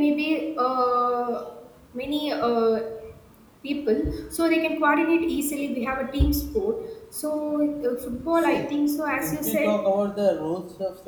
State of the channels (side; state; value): both; identical; correlation 1.00